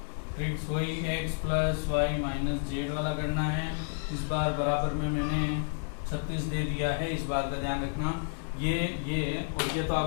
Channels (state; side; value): silent; right; digital silence